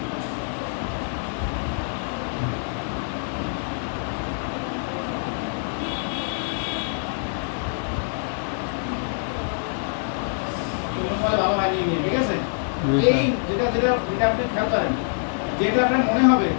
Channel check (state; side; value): silent; right; digital silence